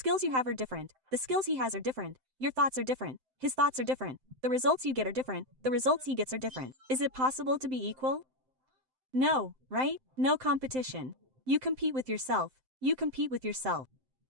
you have are different. The skills he has are different. Your thoughts are different. His thoughts are different. The results you get are different. The results he gets are different. Is it possible to be equal? No, right? No competition. You compete with yourself. You compete with yourself.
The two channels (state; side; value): late; left; 7.7 ms